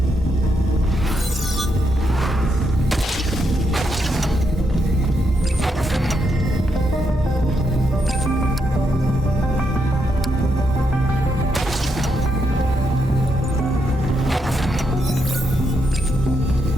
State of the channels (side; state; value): both; normal; correlation 0.80